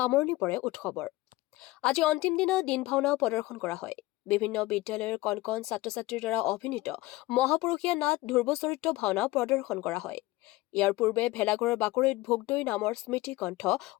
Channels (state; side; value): quieter; right; 19.1 dB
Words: পৰে উৎসৱৰ। আজি অন্তিম দিনা দিন ভাওনাও প্ৰদৰ্শন কৰা হয়। বিভিন্ন বিদ্যালয়ৰ কণ কণ ছাত্ৰ-ছাত্ৰীৰ দ্বাৰা অভিনীত মহাপুৰুষীয়া নাট ধ্ৰুৱ চৰিত্ৰ ভাওনা প্ৰদৰ্শন কৰা হয়। ইয়াৰ পূৰ্বে ভেলাঘৰৰ বাকৰিত ভোগদৈ নামৰ স্মৃতি গ্ৰন্থ